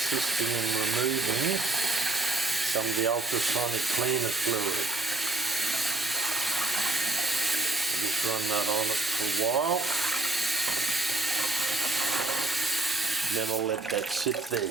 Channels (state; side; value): quieter; left; 3.0 dB